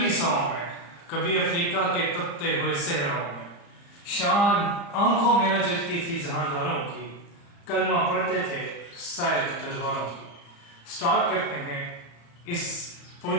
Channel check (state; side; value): late; right; 35 ms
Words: में, कभी अफ्रीका के तपते हुए सहराओं में। शान आंखों में न जगती थी जहांदारों की, कलमा पढ़ते थे शायद तलवारों की। स्टार्ट करते हैं इस